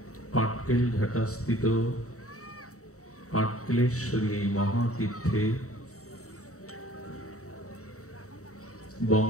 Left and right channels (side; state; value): right; late; 0.65 ms